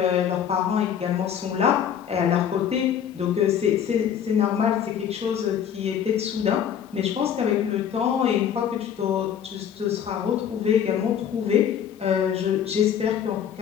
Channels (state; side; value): quieter; right; 8.7 dB